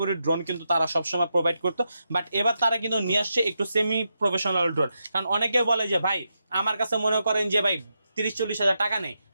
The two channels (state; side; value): inverted; both; correlation -0.85